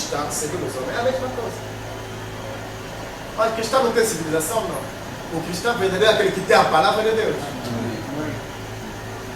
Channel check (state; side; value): identical; both; correlation 1.00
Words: segundo os homens, é a mesma coisa. Mas o cristão não tem civilização, não. O cristão verdadeiro é aquele que tem a palavra de Deus.